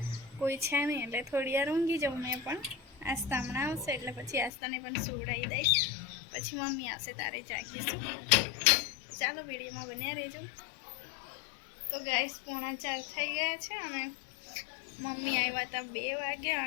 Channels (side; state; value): right; drops out; at 4.5 s